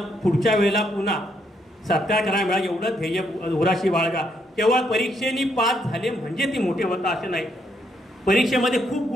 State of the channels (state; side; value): normal; both; correlation 0.74